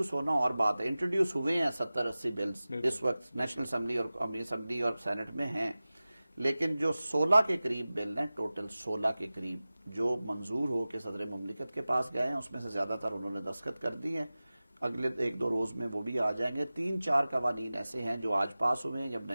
ہونا اور بات ہے، انٹروڈیوس ہوئے ہیں 70-80 بلز اس وقت نیشنل اسمبلی اور قومی اسمبلی اور سینٹ میں ہیں، لیکن جو 16 کے قریب بل ہیں، ٹوٹل 16 کے قریب جو منظور ہو کے صدر مملکت کے پاس گئے ہیں، اس میں سے زیادہ تر انہوں نے دستخط کر دی ہیں. اگلے 1-2 روز میں وہ بھی آ جائیں گے. 3-4 قوانین ایسے ہیں جو آج پاس ہوئے ہیں، جب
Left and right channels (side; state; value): both; inverted; correlation -0.97